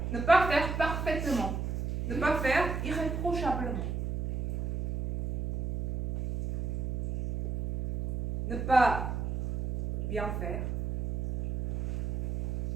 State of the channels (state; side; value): noise; right; hum, 3 dB below the sound